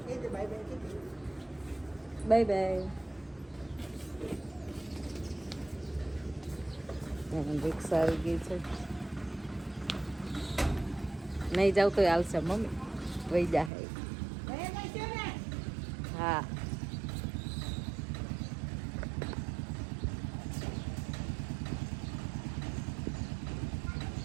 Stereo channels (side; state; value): left; drops out; at 13.7 s